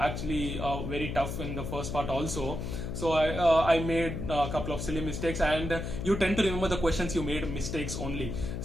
very tough in the first part also. So I made a couple of silly mistakes, and you tend to remember the questions you made mistakes only.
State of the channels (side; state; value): left; noise; hum, 5 dB below the sound